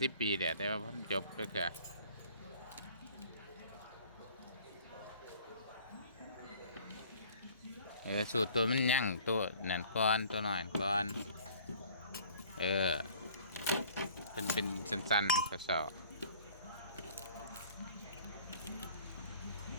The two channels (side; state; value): both; inverted; correlation -0.51